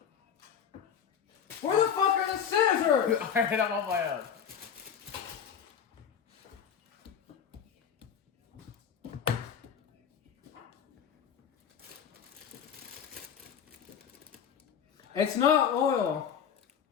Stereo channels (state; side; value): quieter; right; 7.8 dB